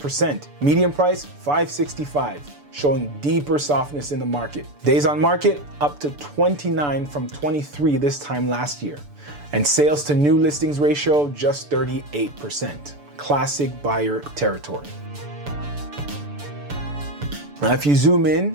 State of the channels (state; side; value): late; left; 6.9 ms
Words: Median price, $565,000, showing deeper softness in the market. Days on market, up to 29 from 23 this time last year. And sales to new listings ratio, just 38%. Classic buyer territory. Now, if you zoom